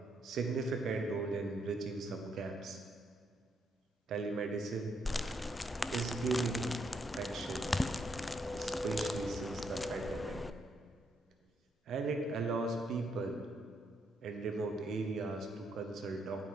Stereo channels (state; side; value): normal; both; correlation 0.76